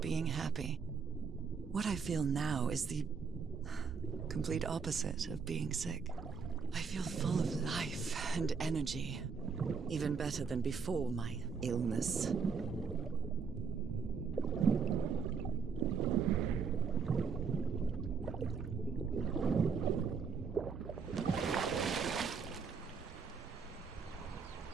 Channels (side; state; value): left; quieter; 5.6 dB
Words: happy. What I feel now is the complete opposite of being sick. I feel full of life and energy, even better than before my illness.